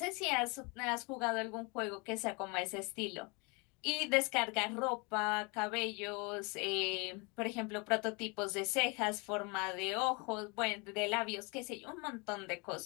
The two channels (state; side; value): quieter; right; 30.0 dB